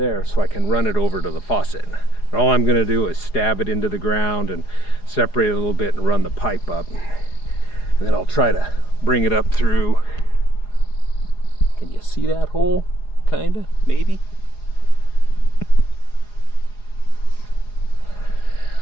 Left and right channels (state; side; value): late; right; 4.8 ms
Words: so I can run it over to the faucet. And all I'm going to do is stab it into the ground and separate it a little bit and run the pipe up, and then I'll try to bring it up through. Can you see that hole? Kinda, maybe.